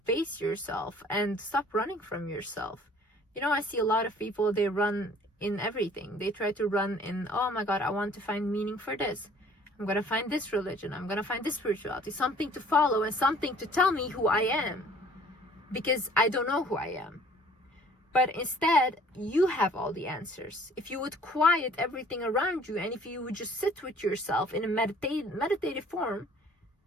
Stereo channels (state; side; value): normal; both; correlation 0.54